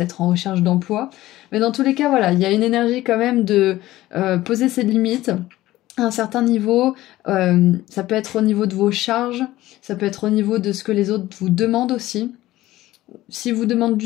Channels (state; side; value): quieter; right; 16.2 dB